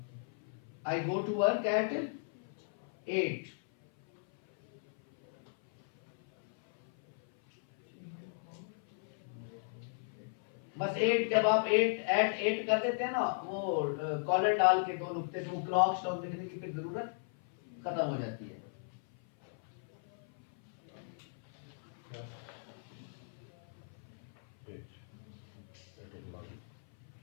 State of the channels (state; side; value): silent; right; 54 dB below the other